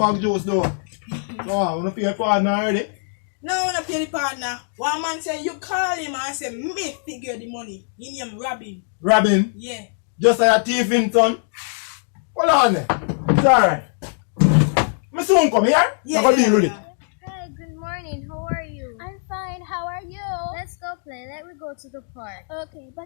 juice though. Wow, we don't pay your partner already. No, I want to pay the partner. One man say you call him and say me figure the money. He name Robin. Robin? Yeah. Just like a thief in son. Hold on there. It's alright. Me soon come here. Yeah, I'm going to deal with it. Hi, good morning. How are you? I'm fine. How are you? Let's go play. Let me go to the park. Okay,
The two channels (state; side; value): silent; right; digital silence